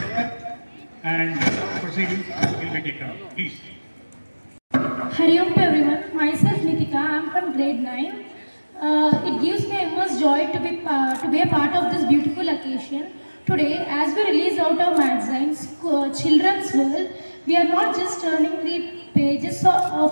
and proceedings will be taken up. Please. Hari Om to everyone. Myself Nitika. I am from grade 9. It gives me immense joy to be a part of this beautiful occasion. Today, as we release out our magazines, Children's World, we are not just turning the pages of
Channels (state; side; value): inverted; both; correlation -1.00